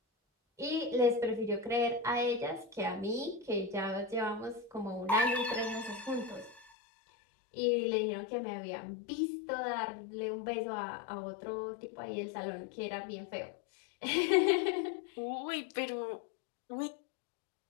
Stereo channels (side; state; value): right; drops out; at 6.7 s